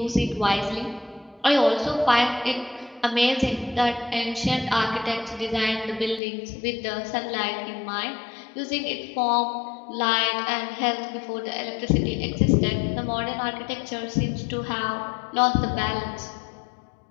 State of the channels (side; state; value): right; drops out; at 6.2 s